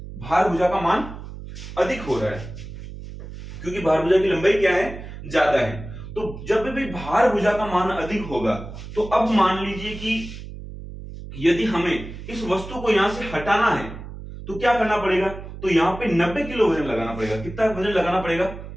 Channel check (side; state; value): right; noise; hum, 12 dB below the sound